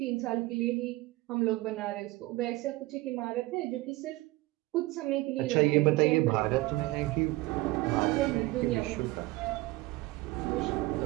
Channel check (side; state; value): left; quieter; 20.0 dB